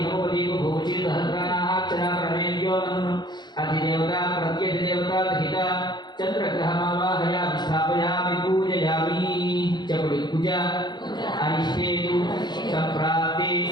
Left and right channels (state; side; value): late; right; 0.21 ms